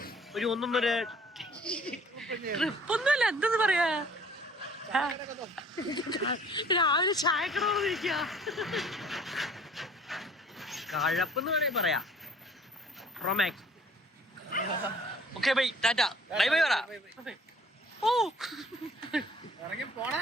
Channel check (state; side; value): normal; both; correlation 0.54